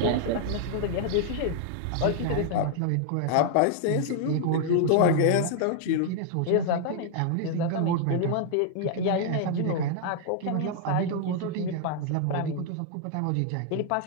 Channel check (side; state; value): both; different; correlation 0.00